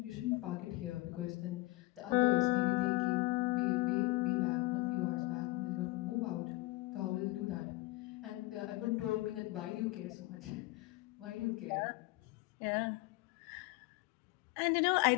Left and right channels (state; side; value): quieter; right; 20.9 dB